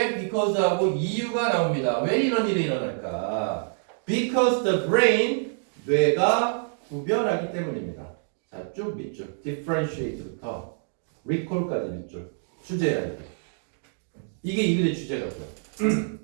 because하고 이유가 나옵니다. 왜 이런 일이 일어날까? Because the brain, 뇌가 구별하기 때문입니다. 자, 쭉 밑줄. differentiate부터 recall까지 밑줄. 주제야, 이게 이 글의 주제라고요.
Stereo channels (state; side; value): silent; left; digital silence